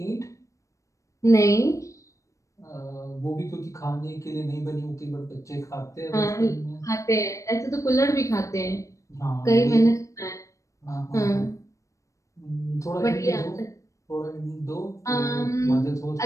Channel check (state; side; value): late; right; 0.15 ms